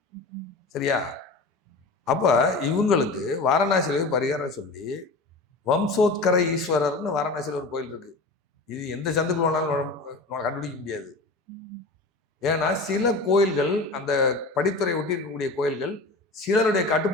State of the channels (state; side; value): quieter; right; 3.3 dB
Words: சரியா? அப்ப இவங்களுக்கு வாரணாசியில பரிகாரம் சொல்லி வம்சோத்கர ஈஸ்வரர்னு வாரணாசியில் ஒரு கோயில் இருக்கு. இது எந்த சந்துக்குள்ள வேணாலும் கண்டுபிடிக்க முடியாது. ஏன்னா சில கோயில்கள், அந்த படித்துறை ஒட்டி இருக்கக்கூடிய கோயில்கள் சிலருடைய